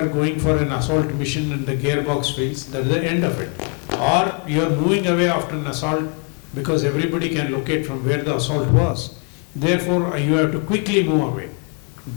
going for an assault mission and the gearbox fails, that is the end of it. Or you are moving away after an assault because everybody can locate from where the assault was. Therefore, you have to quickly move away.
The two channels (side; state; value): right; quieter; 37.5 dB